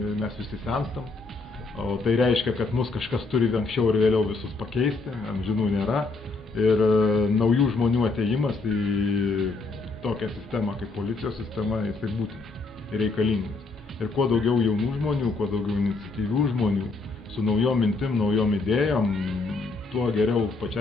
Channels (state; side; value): quieter; right; 3.7 dB